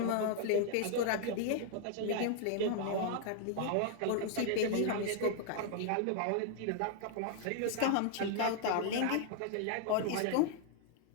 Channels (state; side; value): different; both; correlation 0.00